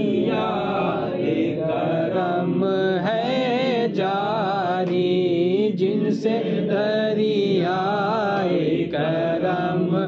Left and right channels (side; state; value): both; identical; correlation 1.00